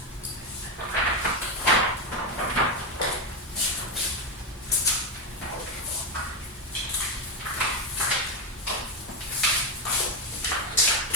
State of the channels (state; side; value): normal; both; correlation 0.09